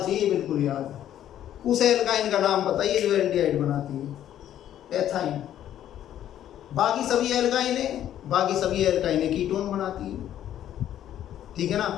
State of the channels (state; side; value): quieter; right; 11.3 dB